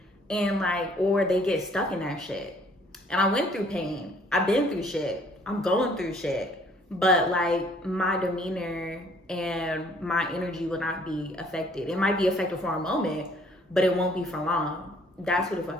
And like, or they get stuck in that shit. And I went through pain. I've been through shit. I'm going through shit. But like, my demeanor and my energy will not be affected. It might be affected for a moment, but it won't be for long. That's who the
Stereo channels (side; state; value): both; normal; correlation 0.60